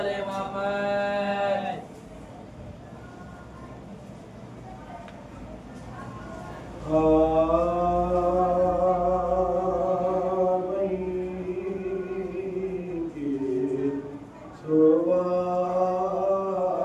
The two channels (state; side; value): identical; both; correlation 1.00